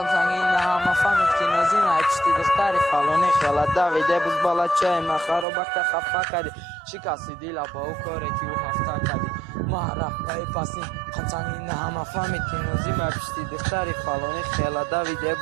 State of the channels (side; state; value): left; drops out; at 5.5 s